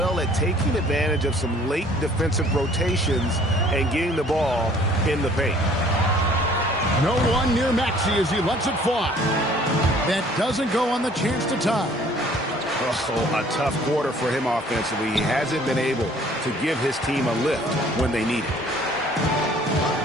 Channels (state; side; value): normal; both; correlation 0.56